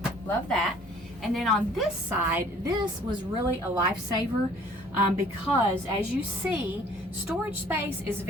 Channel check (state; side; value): normal; both; correlation 0.54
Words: love that. And then on this side, this was really a lifesaver because as you see, storage space is